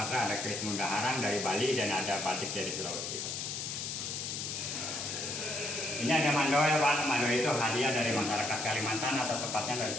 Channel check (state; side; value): noise; left; hiss, 4 dB below the sound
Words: ada keris Mundaharang dari Bali, dan ada batik dari Sulawesi. Ini ada mandoel Pak. Mandoel itu hadiah dari masyarakat Kalimantan atau tepatnya dari